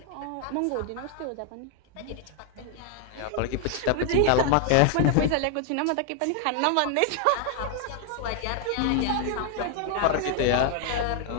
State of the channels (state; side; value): different; both; correlation 0.00